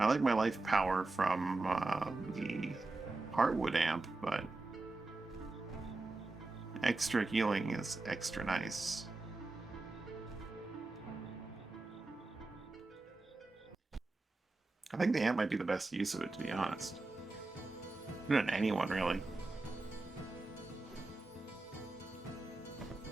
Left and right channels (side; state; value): left; quieter; 3.3 dB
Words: like my life power from the Heartwood amp, but extra healing is extra nice. I think the amp might be the best use of it, to be honest. Not anyone, really.